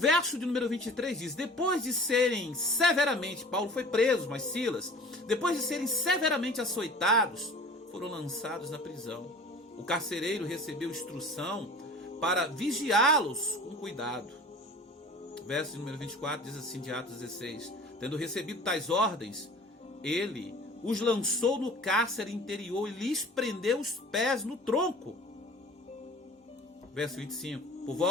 de número 23 diz: depois de serem severamente, Paulo foi preso, mas Silas, depois de serem severamente açoitados, foram lançados na prisão. O carcereiro recebeu instrução para vigiá-los com cuidado. O verso de número 24 diz assim, de Atos 16: tendo recebido tais ordens, ele os lançou no cárcere interior e lhes prendeu os pés no tronco. Verso 25: por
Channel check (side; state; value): both; normal; correlation 0.43